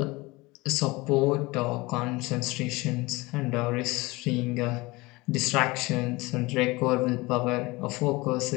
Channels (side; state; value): right; quieter; 22.6 dB